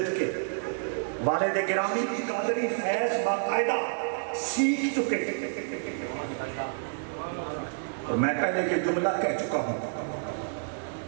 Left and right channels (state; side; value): silent; left; digital silence